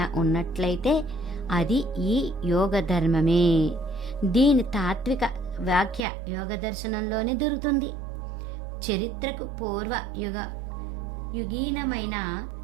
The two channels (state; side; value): drops out; left; at 6.0 s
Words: ఉన్నట్లయితే అది ఈ యోగ ధర్మమే. దీని తాత్విక వ్యాఖ్య యోగ దర్శనంలోనే దొరుకుతుంది. చరిత్రకు పూర్వ యుగీనమైన